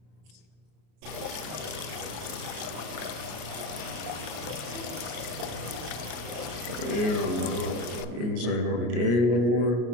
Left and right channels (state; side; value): late; left; 33 ms